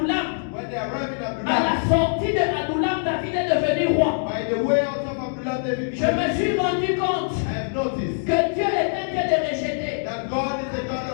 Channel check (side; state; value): right; silent; digital silence